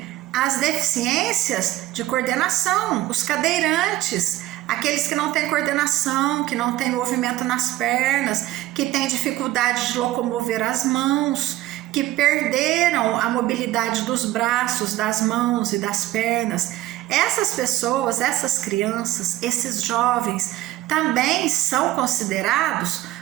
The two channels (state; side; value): quieter; left; 15.7 dB